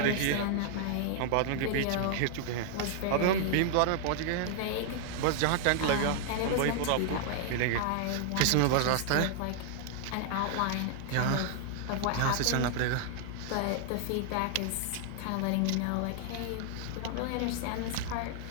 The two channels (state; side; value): different; both; correlation 0.00